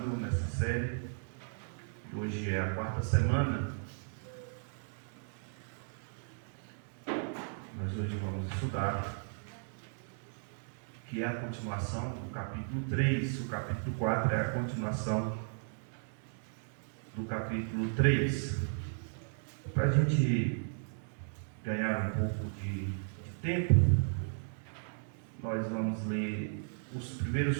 nessa série. Hoje é a 4ª semana. Mas hoje vamos estudar, que é a continuação do capítulo 3. O capítulo 4 é a continuação do capítulo 3. Para a gente ganhar um pouco de tempo, nós vamos ler os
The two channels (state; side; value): silent; left; digital silence